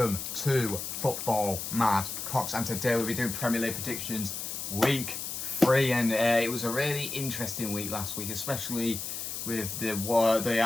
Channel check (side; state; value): left; noise; hiss, 5 dB below the sound